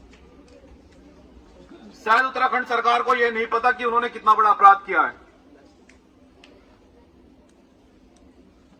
शायद उत्तराखंड सरकार को यह नहीं पता कि उन्होंने कितना बड़ा अपराध किया है।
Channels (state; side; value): identical; both; correlation 1.00